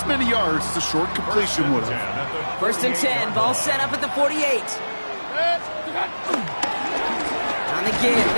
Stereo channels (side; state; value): both; inverted; correlation -1.00